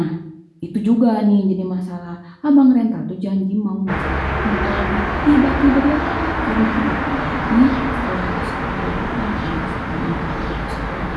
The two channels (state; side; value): identical; both; correlation 1.00